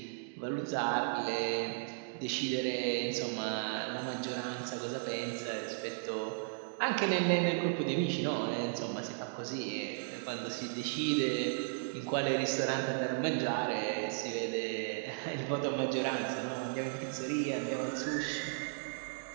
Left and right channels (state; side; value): silent; left; digital silence